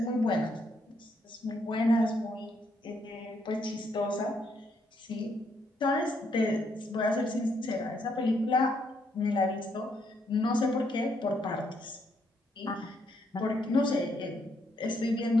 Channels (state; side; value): normal; both; correlation 0.74